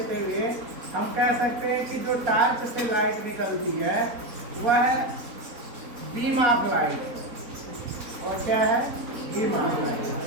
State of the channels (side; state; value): left; late; 4.0 ms